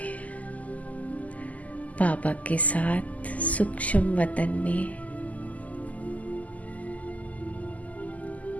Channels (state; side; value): late; right; 0.074 ms